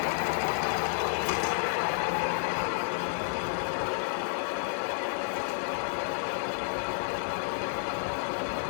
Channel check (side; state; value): right; silent; digital silence